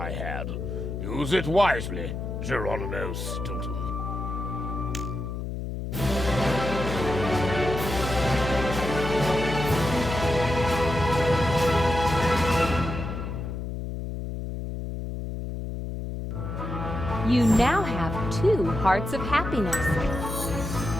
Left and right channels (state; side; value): noise; left; hum, 5 dB below the sound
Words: had. Use it wisely, Geronimo Stilton. You now have 2 hearts of happiness.